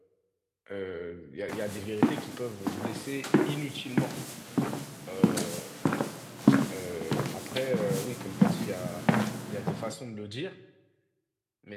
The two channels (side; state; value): both; identical; correlation 1.00